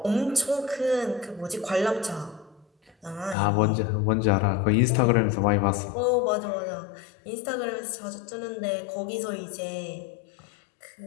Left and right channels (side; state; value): right; drops out; at 3.4 s